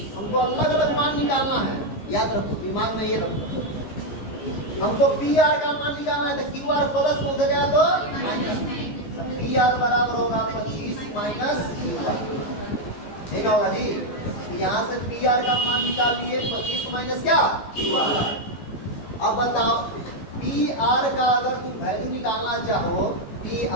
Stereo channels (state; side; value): late; right; 15 ms